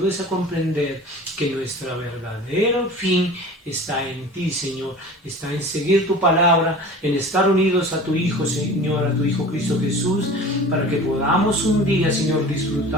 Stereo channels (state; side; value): normal; both; correlation 0.39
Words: a comprender que nuestro verdadero fin está en ti, Señor, está en seguir tu palabra, en estar unidos a tu Hijo, Señor, a tu Hijo Cristo Jesús, para que podamos un día, Señor,